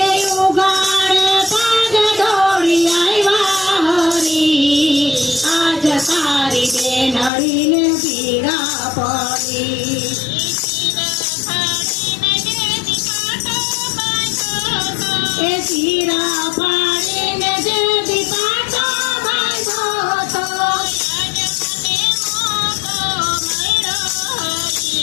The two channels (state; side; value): drops out; right; at 7.3 s